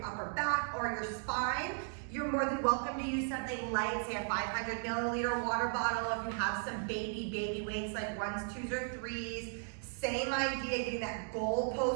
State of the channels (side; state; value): left; silent; 54 dB below the other